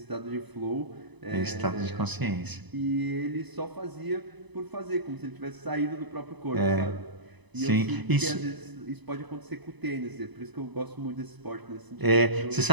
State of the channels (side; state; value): left; late; 1.0 ms